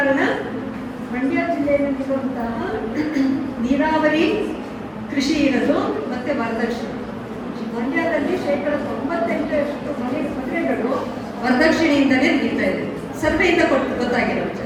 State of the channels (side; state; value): both; identical; correlation 1.00